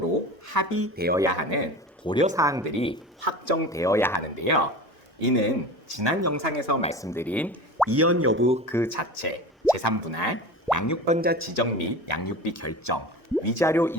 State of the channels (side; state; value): both; normal; correlation 0.32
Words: 합의되어야 하는 고려사항들이 확정되어야 하는데요. 이는 지난 영상에서 말씀드린 이혼 여부 그 자체, 제3분할, 양육권자 지정 및 양육비 결정, 위자료